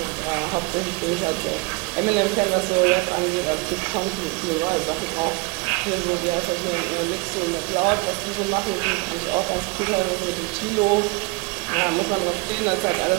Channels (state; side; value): quieter; left; 28.1 dB